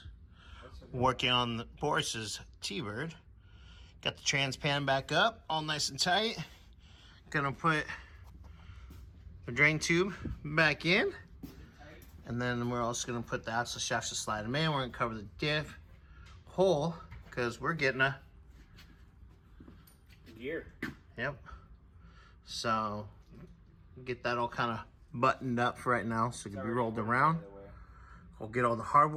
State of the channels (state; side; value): identical; both; correlation 1.00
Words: Working on Boris's T-Bird. Got the trans pan back up, all nice and tight. Gonna put the drain tube back in. And then we're also gonna put the axle shafts to slide them in. We're gonna cover the diff hole because we're getting a gear. Yep. So get that all kind of buttoned up for right now so it can be rolled around. We'll get all the